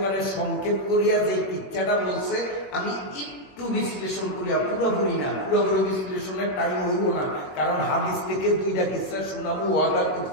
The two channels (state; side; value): late; right; 21 ms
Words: সংক্ষেপ করিয়া যে কিচ্ছাটা বলছে, আমি একটু বিশ্লেষণ করিয়া, পুরোপুরি না, পুরোপুরি বিশ্লেষণের টাইম হইব না, কারণ হাদিস থেকে দুইটা কিচ্ছা শোনাবো ওয়াদা